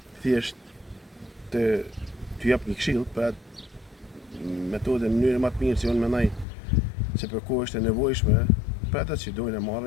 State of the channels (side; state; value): right; drops out; at 6.5 s